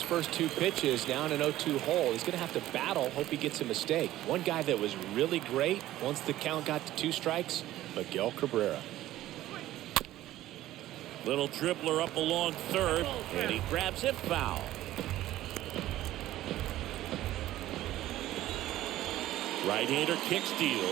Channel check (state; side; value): quieter; left; 14.6 dB